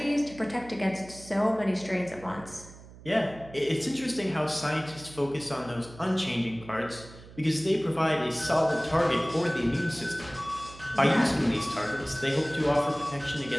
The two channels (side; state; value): right; noise; hum, 19 dB below the sound